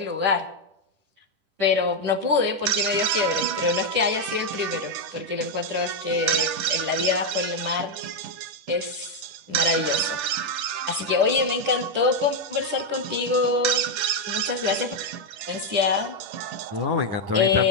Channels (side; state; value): left; late; 10 ms